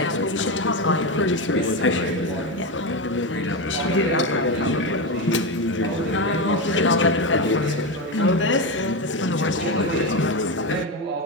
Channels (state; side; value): normal; both; correlation 0.14